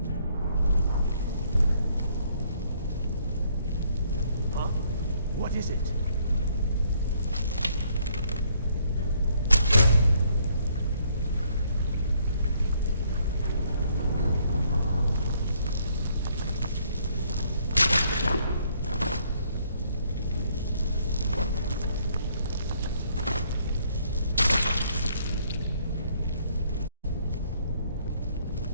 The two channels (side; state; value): both; inverted; correlation -0.67